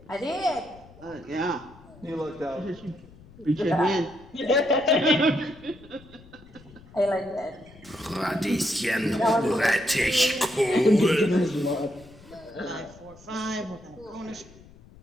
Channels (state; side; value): noise; left; rumble, 22 dB below the sound